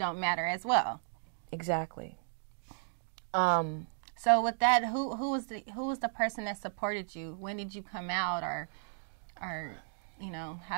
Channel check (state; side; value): silent; left; digital silence